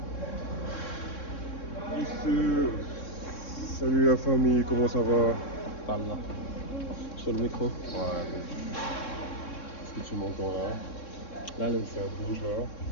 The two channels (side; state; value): right; late; 3.6 ms